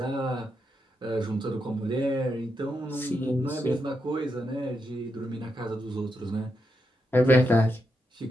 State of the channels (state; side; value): normal; both; correlation 0.84